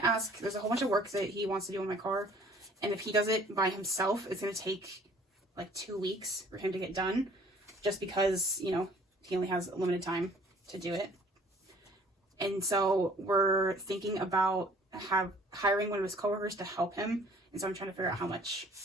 ask, there's a whole bunch of work that he wants to do on my car. And if he does it by himself, it's going to take like 2 weeks for him to get done. Just because, you know, he only has a limited time to do it. And so we're thinking about hiring one of his coworkers to help him. And so I'm trying to figure out how much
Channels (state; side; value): normal; both; correlation 0.55